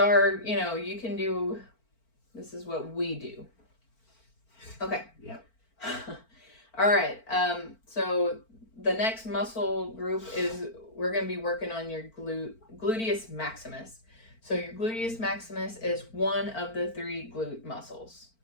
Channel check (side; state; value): right; late; 4.4 ms